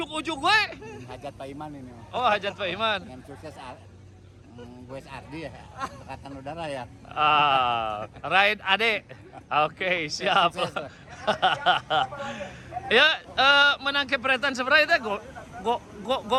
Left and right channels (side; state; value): both; identical; correlation 1.00